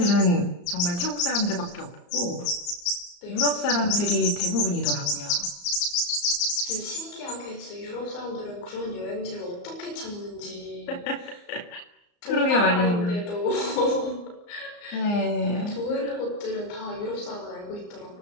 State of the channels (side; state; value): right; late; 34 ms